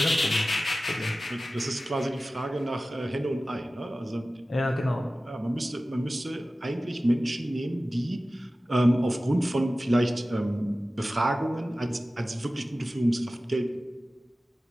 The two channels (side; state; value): both; normal; correlation 0.96